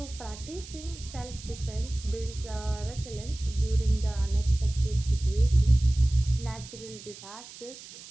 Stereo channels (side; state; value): right; noise; hiss, 16 dB below the sound